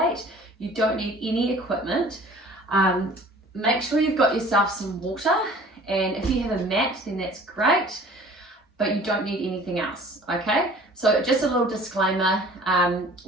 You don't need any equipment. Make sure you've got yourself some water, and if you have a mat, then that's great, but you don't need anything else, okay? So just a little disclaimer,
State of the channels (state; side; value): normal; both; correlation 0.48